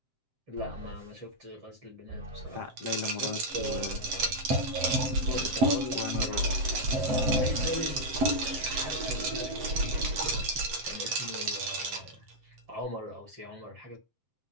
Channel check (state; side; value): late; left; 7.6 ms